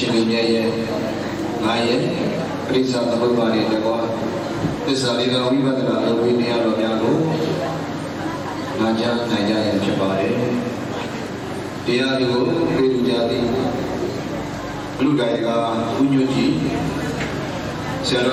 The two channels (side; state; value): both; identical; correlation 1.00